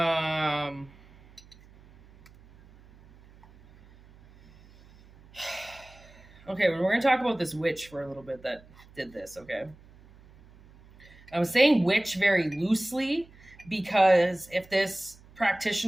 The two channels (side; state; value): right; noise; hum, 25 dB below the sound